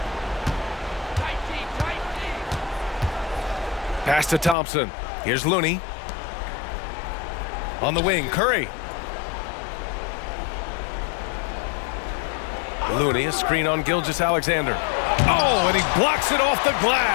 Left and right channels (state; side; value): drops out; right; at 4.5 s